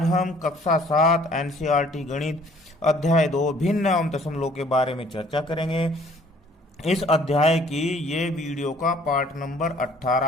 हम कक्षा 7 एनसीईआरटी गणित अध्याय 2 भिन्न एवं दशमलव के बारे में चर्चा करेंगे। इस अध्याय की ये वीडियो का पार्ट नंबर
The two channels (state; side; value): normal; both; correlation 0.57